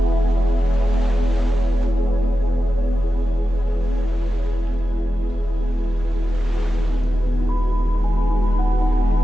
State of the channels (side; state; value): right; noise; hum, 24 dB below the sound